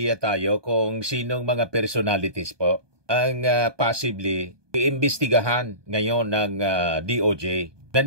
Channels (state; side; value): late; left; 1.2 ms